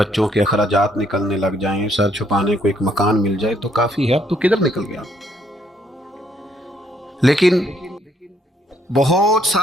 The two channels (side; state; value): both; normal; correlation 0.70